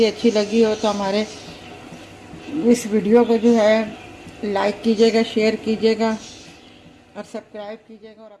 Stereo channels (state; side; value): identical; both; correlation 1.00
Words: अच्छी लगी हो तो हमारे इस वीडियो को जो है लाइक कीजिएगा, शेयर कीजिएगा और सब्सक्राइब कीजिएगा और